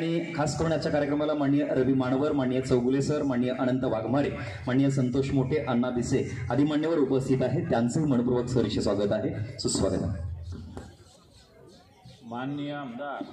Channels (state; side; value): identical; both; correlation 1.00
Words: खास करून आजच्या कार्यक्रमाला माननीय रवी मानवर, माननीय चौगुले सर, माननीय अनंत वाघमारे, माननीय संतोष मोठे, अण्णा भिसे आदी मान्यवर उपस्थित आहेत. त्यांचंही मनपूर्वक सहर्ष स्वागत आहे. सुस्वागत आहे. माननीय आमदार